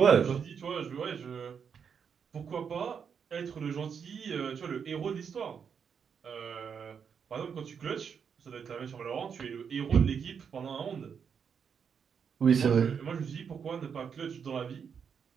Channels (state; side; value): quieter; left; 6.9 dB